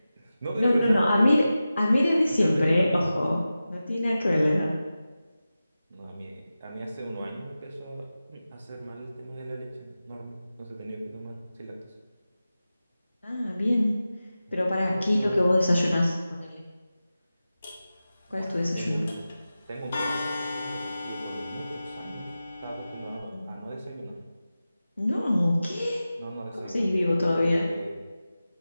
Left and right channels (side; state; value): both; inverted; correlation -0.94